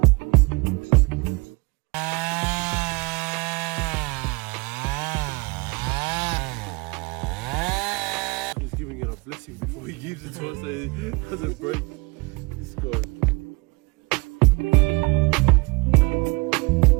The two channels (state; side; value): quieter; left; 27.6 dB